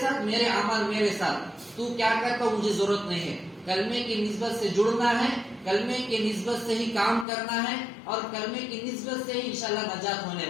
ساتھ، میرے عمل میرے ساتھ. تو کیا کرتا مجھے ضرورت نہیں ہے. کلمے کی نسبت سے جڑنا ہے، کلمے کی نسبت سے ہی کام کرنا ہے اور کلمے کی نسبت سے ہی انشاءاللہ نجات ہونے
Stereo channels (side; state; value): right; drops out; at 7.2 s